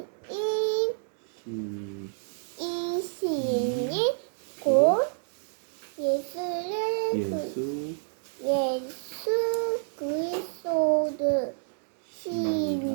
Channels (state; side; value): silent; left; digital silence